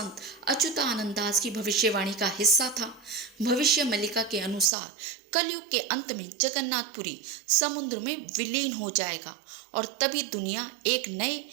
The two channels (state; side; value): drops out; left; at 4.7 s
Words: अच्युतानंद दास की भविष्यवाणी का हिस्सा था? भविष्य मालिका के अनुसार कलयुग के अंत में जगन्नाथपुरी समुद्र में विलीन हो जाएगा और तभी दुनिया एक नए